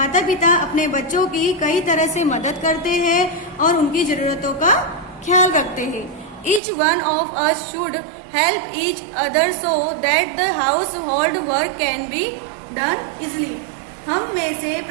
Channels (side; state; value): left; drops out; at 6.6 s